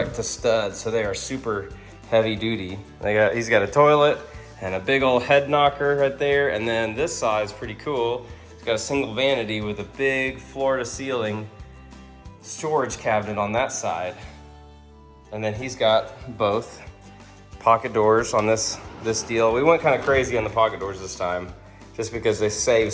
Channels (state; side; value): identical; both; correlation 1.00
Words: to stud, so they are super heavy duty. He's got a toilet and a big old head knocker right there, and then this side is pretty cool. It's got a single vanity with a big floor-to-ceiling storage cabinet on that side. And then he's got both pocket doors on this deal. We went kind of crazy on the pocket doors this time, just because they save